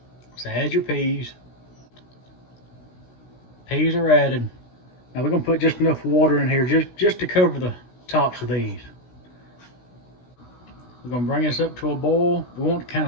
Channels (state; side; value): late; right; 16 ms